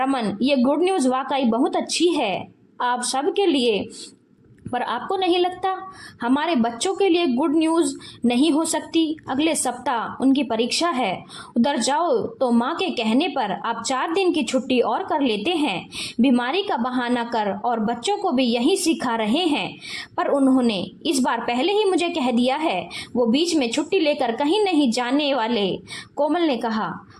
ये गुड न्यूज़ वाकई बहुत अच्छी है आप सब के लिए, पर आपको नहीं लगता हमारे बच्चों के लिए गुड न्यूज़ नहीं हो सकती? अगले सप्ताह उनकी परीक्षा है। उधर जाओ तो माँ के कहने पर आप 4 दिन की छुट्टी और कर लेते हैं, बीमारी का बहाना कर, और बच्चों को भी यही सिखा रहे हैं। पर उन्होंने इस बार पहले ही मुझे कह दिया है, वो बीच में छुट्टी लेकर कहीं नहीं जाने वाले, कोमल ने कहा।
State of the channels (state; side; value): identical; both; correlation 1.00